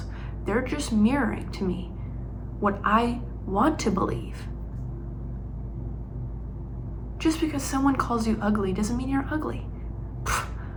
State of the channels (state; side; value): identical; both; correlation 1.00